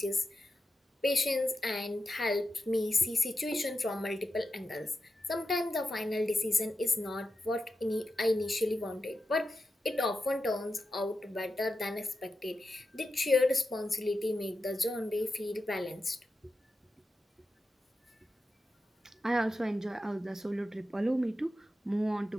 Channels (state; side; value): normal; both; correlation 0.90